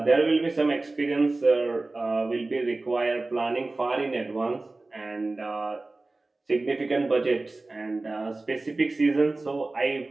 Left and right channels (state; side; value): quieter; left; 3.2 dB